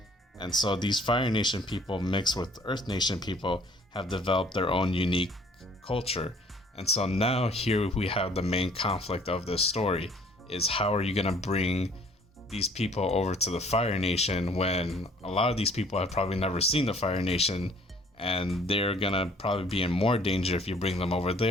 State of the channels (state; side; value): normal; both; correlation 0.56